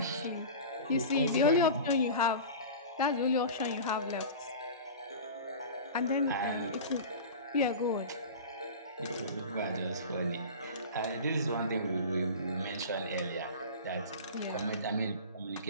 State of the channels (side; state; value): both; inverted; correlation -0.33